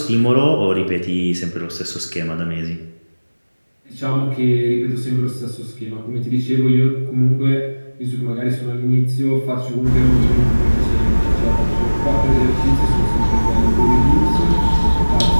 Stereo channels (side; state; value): both; inverted; correlation -1.00